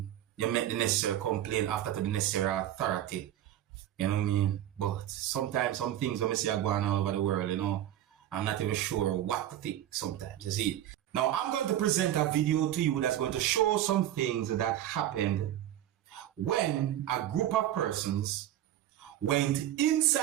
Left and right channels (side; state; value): left; quieter; 12.2 dB